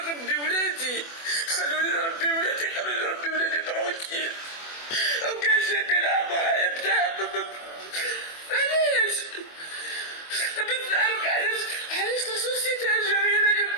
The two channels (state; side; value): late; right; 24 ms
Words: ولادي، خلوني نربي ولادي، خلوني نربي ولادي ترونكيل. وكان جايبين لها مرايا بتاع علاش؟ بغيت نعرف علاش لا سوسيتي الجزائرية